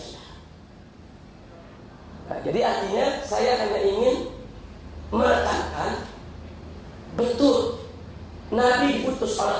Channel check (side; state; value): both; identical; correlation 1.00